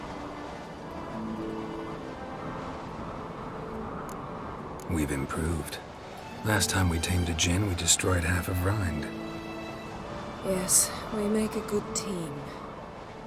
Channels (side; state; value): both; identical; correlation 1.00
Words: We've improved. Last time we tamed a Jinn, we destroyed half of Rind. Yes, we make a good team.